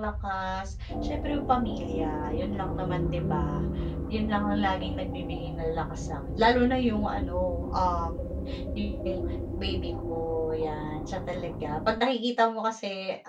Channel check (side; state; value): both; identical; correlation 1.00